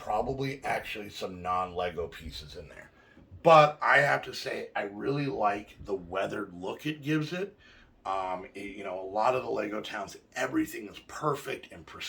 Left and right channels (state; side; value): identical; both; correlation 1.00